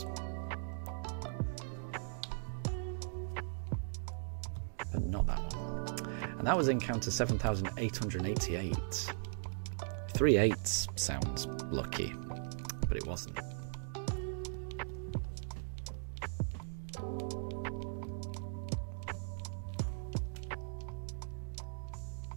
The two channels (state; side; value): silent; left; digital silence